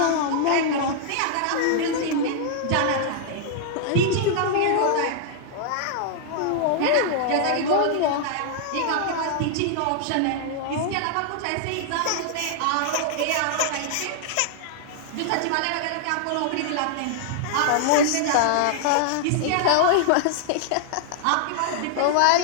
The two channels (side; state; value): both; different; correlation -0.01